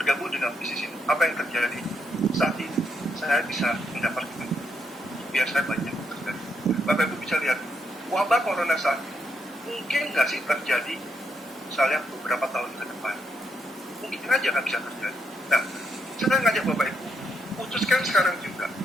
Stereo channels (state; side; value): normal; both; correlation 0.78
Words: dengan bisnis ini. Apa yang terjadi saat ini? Saya bisa mendapatkan biar saya banyak terjadi. Bapak Ibu bisa lihat wabah corona saat ini mungkin nggak sih terjadi misalnya beberapa tahun ke depan, mungkin aja nggak bisa terjadi. Nah, saya ngajak Bapak Ibu putuskan sekarang juga